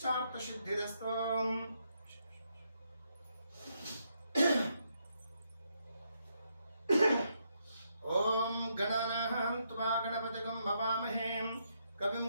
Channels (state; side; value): inverted; both; correlation -0.78